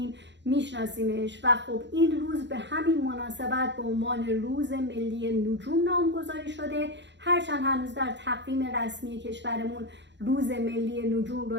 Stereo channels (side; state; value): left; late; 0.52 ms